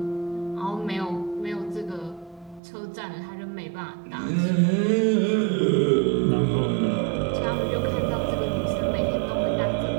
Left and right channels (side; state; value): left; drops out; at 2.6 s